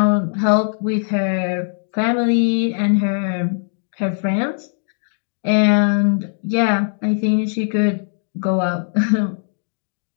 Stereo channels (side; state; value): right; silent; digital silence